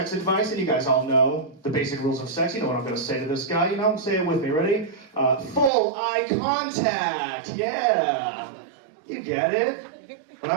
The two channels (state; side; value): drops out; left; at 5.7 s